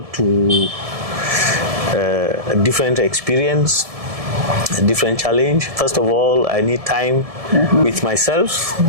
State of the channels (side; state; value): left; late; 1.7 ms